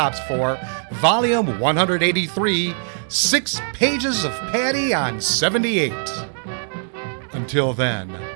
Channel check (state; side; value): silent; left; digital silence